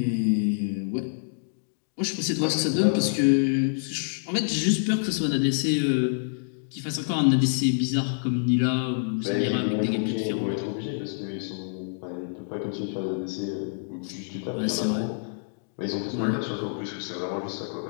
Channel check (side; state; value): right; silent; digital silence